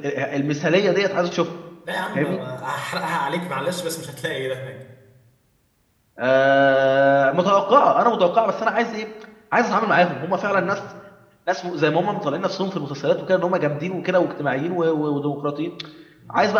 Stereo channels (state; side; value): identical; both; correlation 1.00